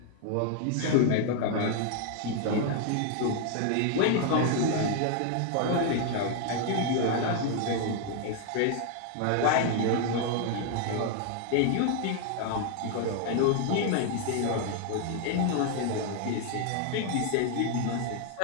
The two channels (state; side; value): different; both; correlation 0.00